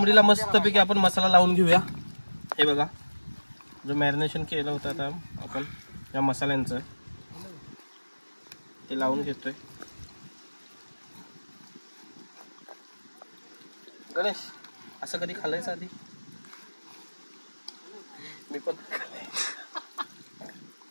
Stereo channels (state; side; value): inverted; both; correlation -1.00